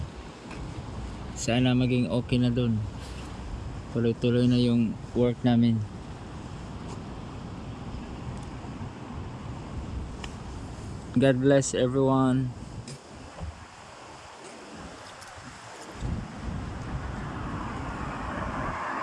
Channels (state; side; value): identical; both; correlation 1.00